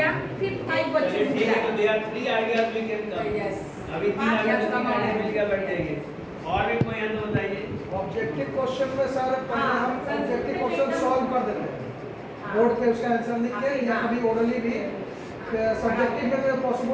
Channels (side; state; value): both; identical; correlation 1.00